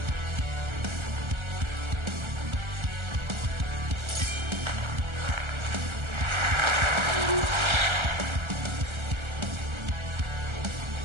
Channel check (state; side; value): late; left; 1.3 ms